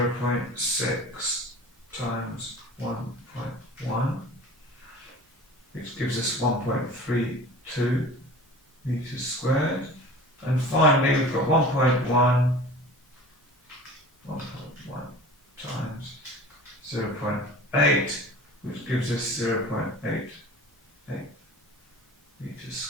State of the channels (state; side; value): normal; both; correlation 0.40